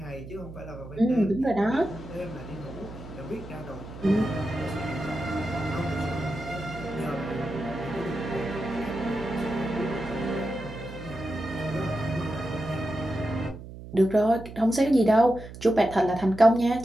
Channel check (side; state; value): right; noise; hum, 13 dB below the sound